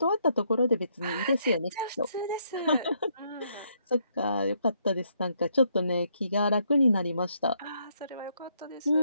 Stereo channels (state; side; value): inverted; both; correlation -0.73